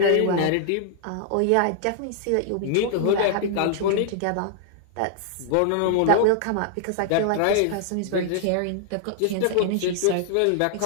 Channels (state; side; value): different; both; correlation -0.01